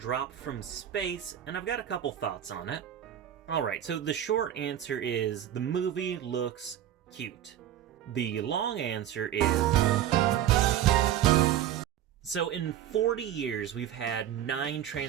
from space, and I've got a couple thoughts on it. Alright, so the short answer is the movie looks cute. The long answer is... So in 40 years, we've had 9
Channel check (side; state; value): left; quieter; 11.1 dB